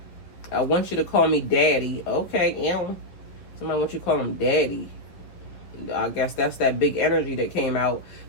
want you to call me daddy. Okay, somebody wants you to call him daddy. I guess that's that big energy that came out.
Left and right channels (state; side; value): late; right; 11 ms